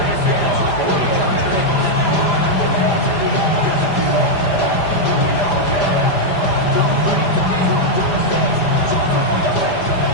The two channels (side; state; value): right; late; 5.0 ms